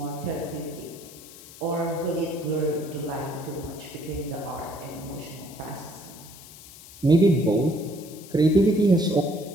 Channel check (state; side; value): noise; left; hiss, 18 dB below the sound